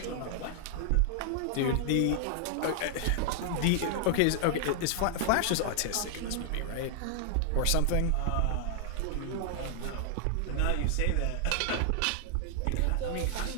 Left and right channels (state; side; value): different; both; correlation 0.00